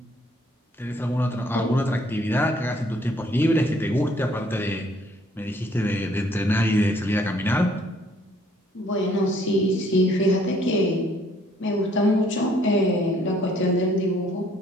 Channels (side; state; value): both; normal; correlation 0.63